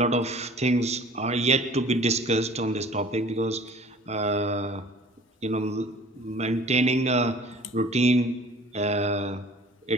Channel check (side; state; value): both; normal; correlation 0.48